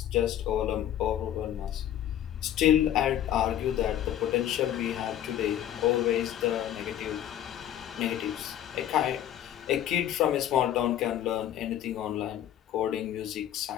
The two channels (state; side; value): quieter; right; 11.2 dB